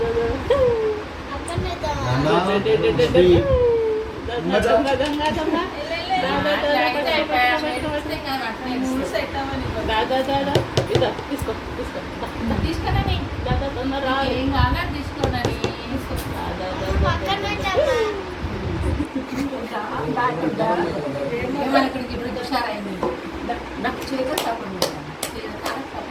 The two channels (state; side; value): identical; both; correlation 1.00